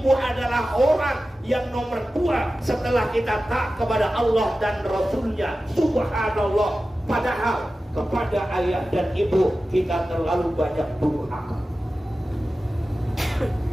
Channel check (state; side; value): normal; both; correlation 0.94